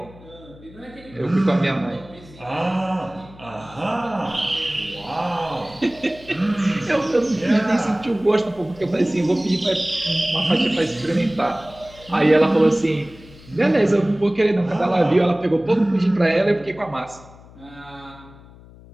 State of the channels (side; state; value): left; noise; hum, 21 dB below the sound